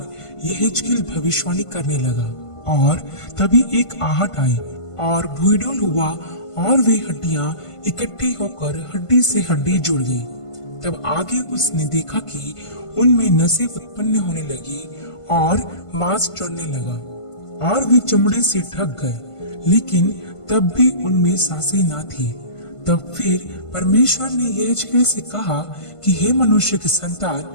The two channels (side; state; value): right; late; 1.5 ms